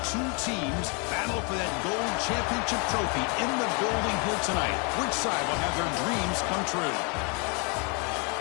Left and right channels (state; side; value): quieter; right; 34.1 dB